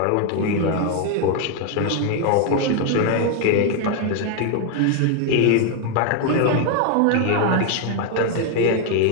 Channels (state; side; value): different; both; correlation 0.01